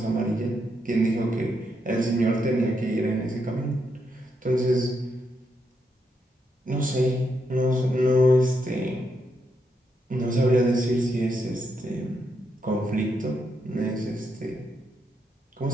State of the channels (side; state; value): both; normal; correlation 0.80